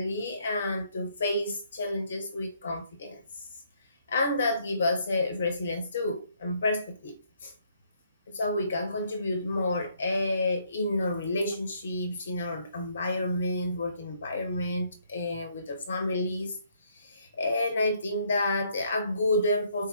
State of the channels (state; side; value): inverted; both; correlation -0.69